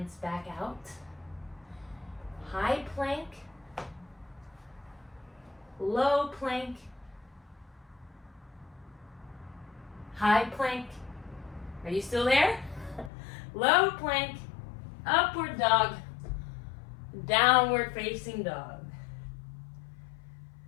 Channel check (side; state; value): right; drops out; at 13.1 s